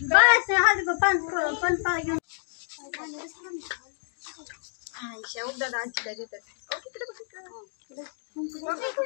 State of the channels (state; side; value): silent; right; digital silence